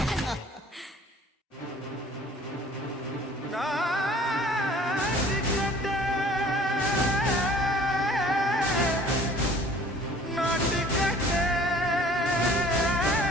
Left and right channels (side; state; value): both; normal; correlation 0.51